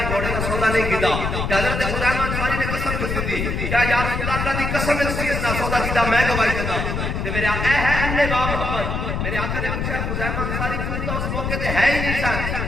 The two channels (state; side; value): noise; left; rumble, 2 dB below the sound